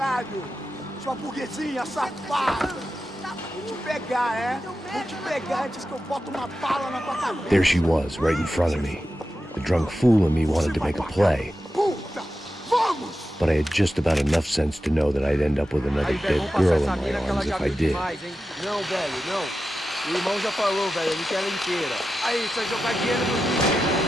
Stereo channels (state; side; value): normal; both; correlation 0.91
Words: Sua burguesinha safada! Vou te pegar, é? Vou te pegar antes que eu boto uma bala na tua cabeça! There she was, right in front of me. The drunk fool in me wanted to make a play. Puta! Vamos! But I had just about enough sense to know that I'd end up with another dead girl in my arms if I did. Não, velho, não. O irmão já falou, velho, ele quer ela inteira. Aí, só jogar dinheiro no lixo.